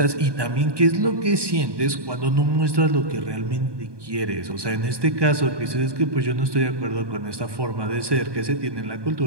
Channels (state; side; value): late; left; 1.2 ms